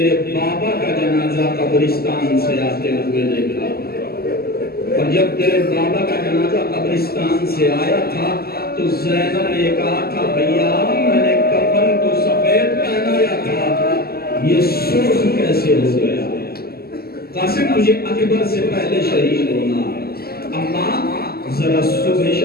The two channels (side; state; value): right; late; 0.45 ms